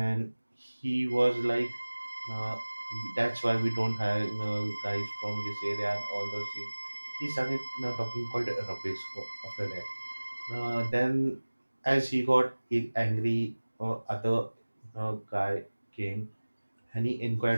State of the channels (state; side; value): inverted; both; correlation -1.00